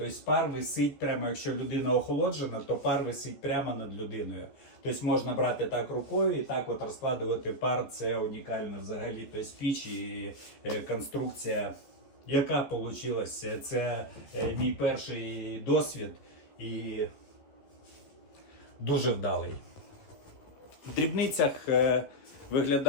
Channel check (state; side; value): late; right; 14 ms